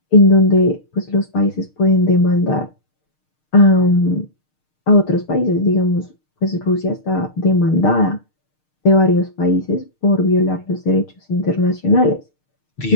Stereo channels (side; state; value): right; late; 6.6 ms